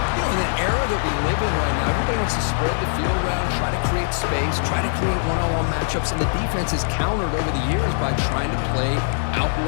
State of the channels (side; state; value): right; silent; digital silence